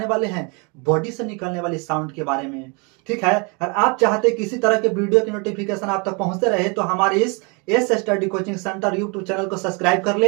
वाले हैं बॉडी से निकलने वाली साउंड के बारे में, ठीक है। और आप चाहते किसी तरह के वीडियो की नोटिफिकेशन आप तक पहुंचते रहे तो हमारे इस S study coaching centre YouTube channel को सब्सक्राइब कर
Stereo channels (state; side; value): quieter; left; 32.1 dB